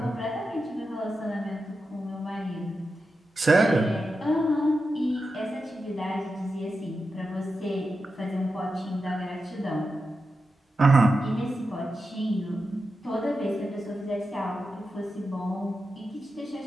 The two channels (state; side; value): normal; both; correlation 0.90